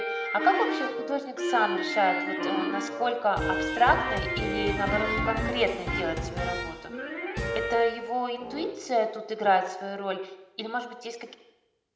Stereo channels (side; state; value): both; identical; correlation 1.00